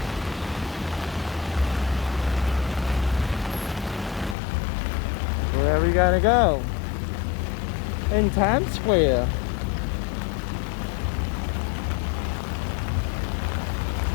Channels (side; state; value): right; drops out; at 4.4 s